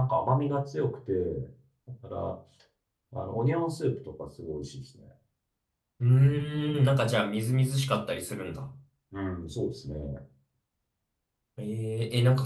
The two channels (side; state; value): both; identical; correlation 1.00